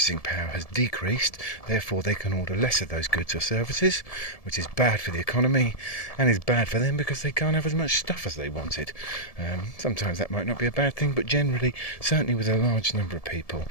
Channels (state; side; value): late; right; 1.7 ms